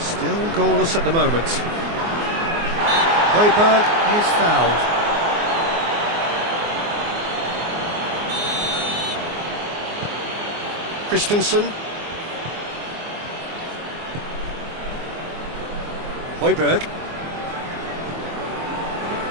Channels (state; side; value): late; left; 24 ms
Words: goalless at the moment. Højbjerg is fouled. Christensen. Højbjerg.